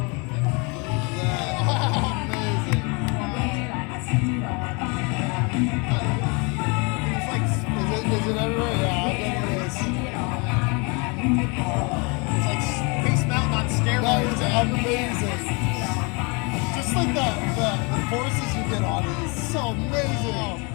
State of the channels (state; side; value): quieter; right; 30.9 dB